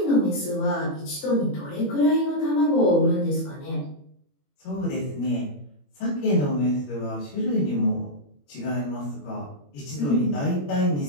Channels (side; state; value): right; late; 21 ms